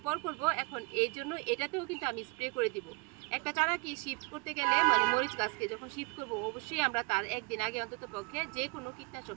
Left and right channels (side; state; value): left; quieter; 29.2 dB